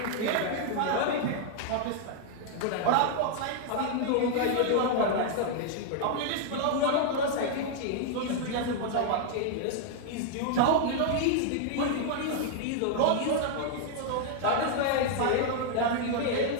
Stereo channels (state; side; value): different; both; correlation 0.00